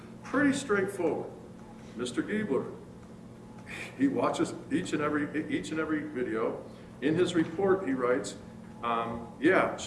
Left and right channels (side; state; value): both; identical; correlation 1.00